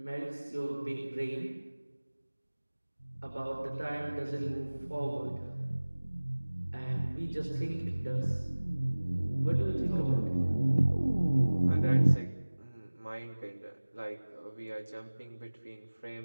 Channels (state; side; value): inverted; both; correlation -1.00